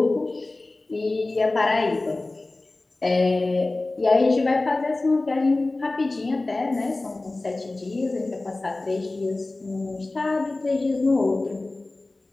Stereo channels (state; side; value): quieter; right; 3.1 dB